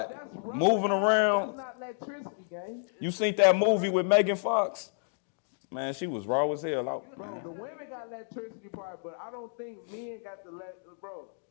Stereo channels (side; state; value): right; silent; digital silence